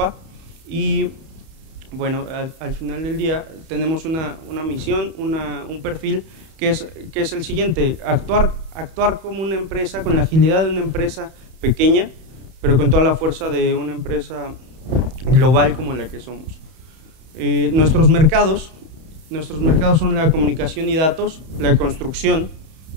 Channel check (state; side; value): late; left; 31 ms